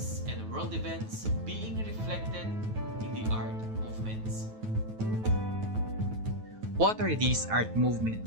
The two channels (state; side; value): late; left; 9.2 ms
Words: and world events being reflected in the art movements. What are these art